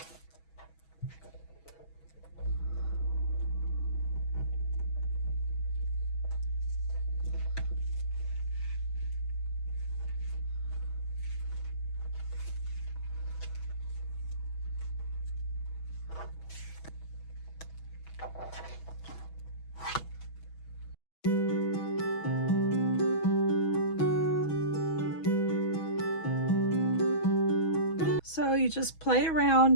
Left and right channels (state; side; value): late; right; 6.2 ms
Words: So you just play